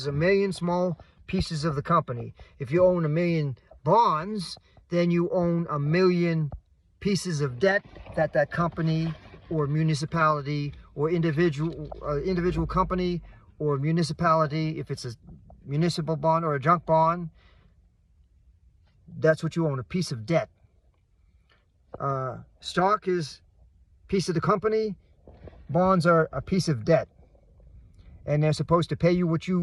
1,000,000 small pieces of the company. If you own 1,000,000 bonds, then you own 1,000,000 pieces of debt that company or municipality or individual company or municipality, if it's a municipal bond or a junk bond, that's what you own, a piece of debt. Stock is a piece of the company. Bonds are a piece of debt, and they're supposed to pay you what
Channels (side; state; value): both; identical; correlation 1.00